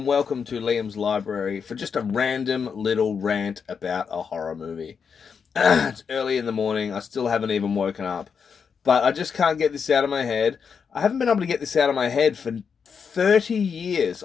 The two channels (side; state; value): right; quieter; 6.3 dB